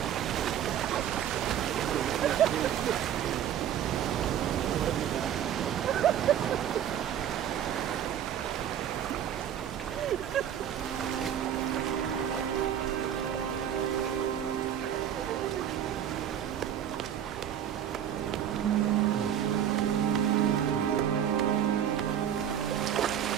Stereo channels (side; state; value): left; quieter; 9.8 dB